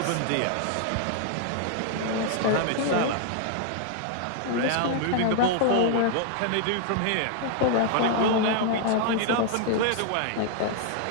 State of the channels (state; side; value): different; both; correlation -0.01